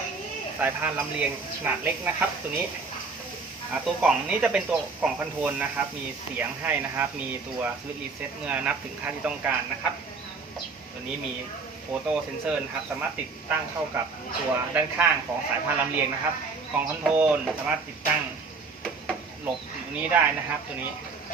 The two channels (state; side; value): quieter; left; 4.4 dB